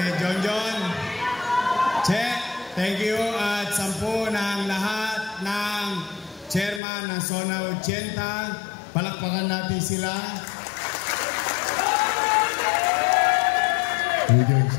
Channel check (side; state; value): right; drops out; at 6.8 s